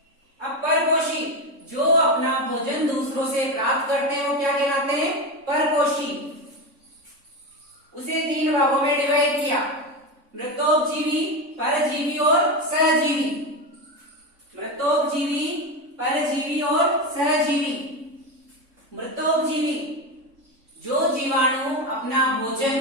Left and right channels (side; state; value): left; late; 3.5 ms